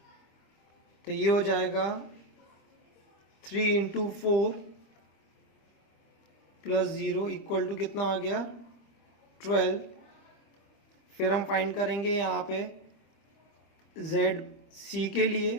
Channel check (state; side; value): late; right; 25 ms